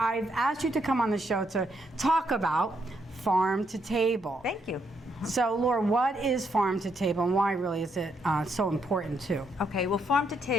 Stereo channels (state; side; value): normal; both; correlation 0.76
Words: asked you to come on the show to talk about farm to table. Thank you. So Laura, what is farm to table and why really is it so important too? Okay, well, farm to